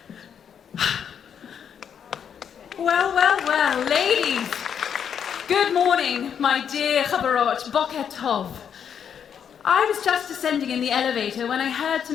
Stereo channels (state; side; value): quieter; right; 8.0 dB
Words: Well, ladies. Good morning, my dear chaverot, boker tov. I was just descending in the elevator when I heard